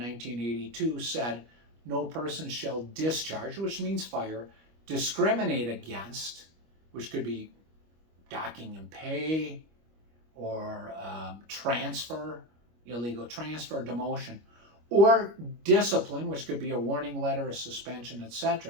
said no person shall discharge, which means fire, discriminate against, which could be docking and pay, or transfer, illegal transfer, demotion, or discipline, which could be a warning letter, a suspension,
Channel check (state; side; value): late; left; 25 ms